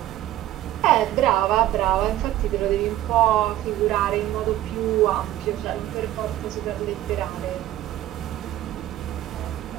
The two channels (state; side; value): quieter; left; 14.0 dB